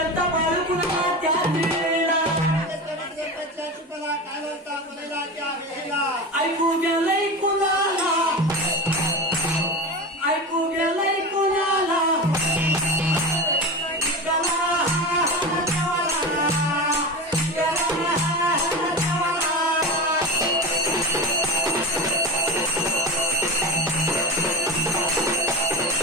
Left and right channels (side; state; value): both; normal; correlation 0.26